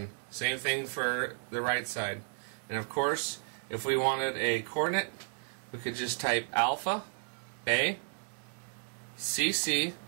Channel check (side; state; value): left; silent; 56 dB below the other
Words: Same thing for the right side. And of course, if we wanted a coordinate, we could just type alpha, A, CC